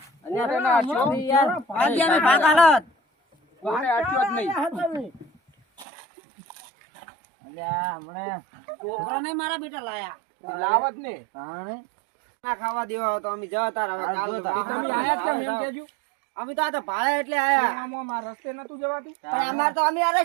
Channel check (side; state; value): left; drops out; at 5.9 s